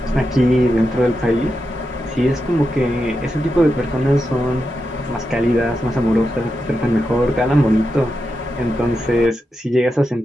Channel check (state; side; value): normal; both; correlation 0.88